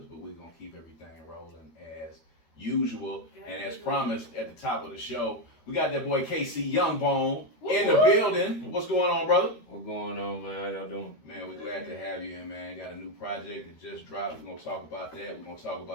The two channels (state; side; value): late; right; 13 ms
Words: but we're going to keep everything rolling as usual. And as promised at the top of the show, we got that boy KC YoungBone in the building. What's going on, brother? What's going on, man? How y'all doing? Man, we're glad to have you in, man. Got a new project that just dropped. We're going to talk about that. We're going to talk